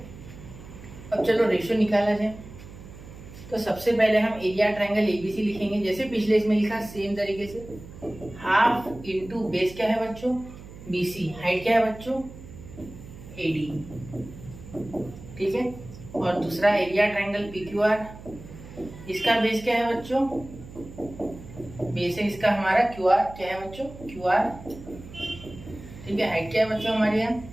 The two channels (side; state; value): right; noise; hum, 16 dB below the sound